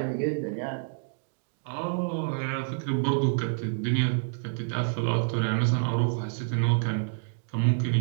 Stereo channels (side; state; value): left; silent; digital silence